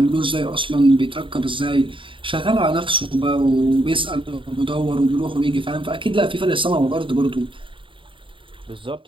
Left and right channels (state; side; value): late; left; 0.25 ms